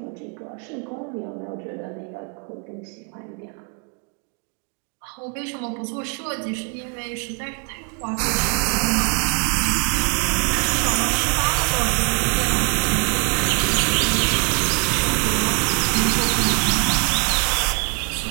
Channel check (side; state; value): left; quieter; 34.5 dB